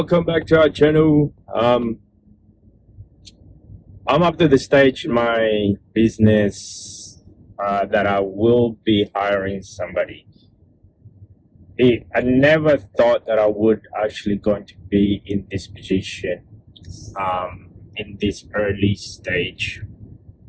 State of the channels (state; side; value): identical; both; correlation 1.00